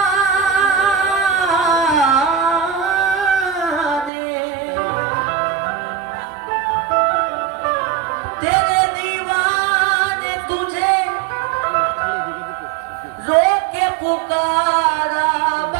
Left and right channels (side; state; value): left; drops out; at 4.1 s